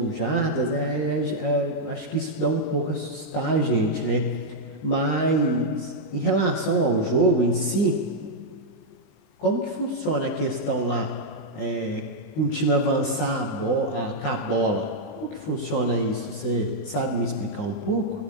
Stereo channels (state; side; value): late; right; 20 ms